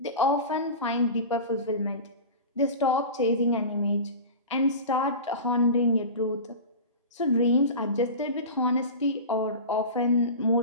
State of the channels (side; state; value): both; inverted; correlation -0.30